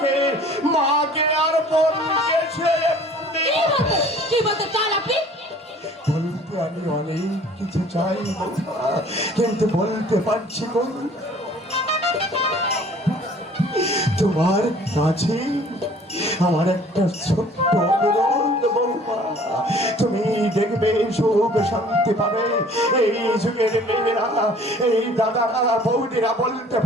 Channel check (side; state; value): both; normal; correlation 0.52